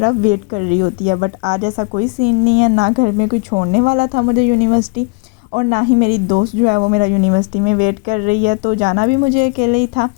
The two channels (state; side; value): quieter; right; 28.6 dB